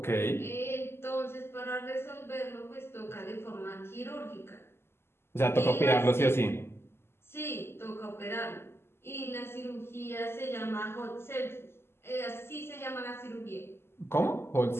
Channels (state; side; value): late; right; 0.12 ms